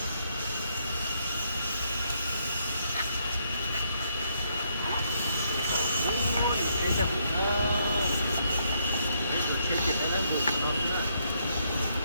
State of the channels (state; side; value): inverted; both; correlation -0.74